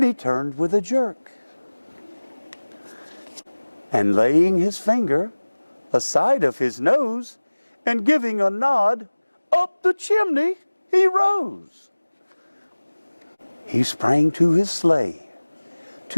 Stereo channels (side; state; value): both; inverted; correlation -1.00